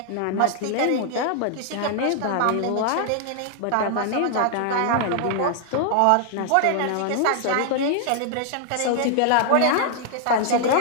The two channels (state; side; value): different; both; correlation -0.01